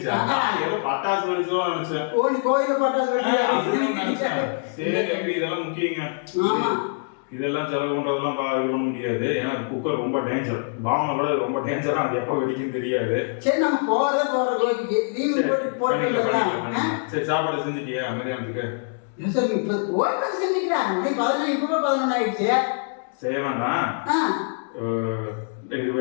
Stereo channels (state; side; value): silent; right; 62 dB below the other